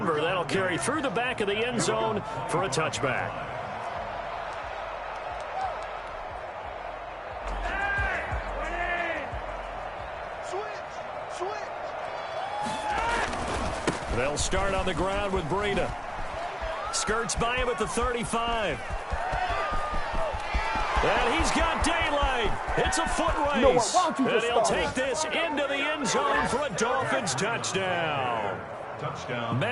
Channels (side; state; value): both; identical; correlation 1.00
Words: that'll carry through the back of the end zone for a touchback. They'll start on the ground with Breida. Skirts by him at the 35. And he's got daylight. It's a foot race. And he'll take this into the end zone for a Dolphins touchdown.